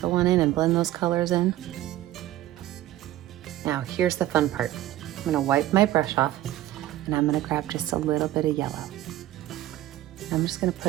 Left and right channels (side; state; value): left; quieter; 14.3 dB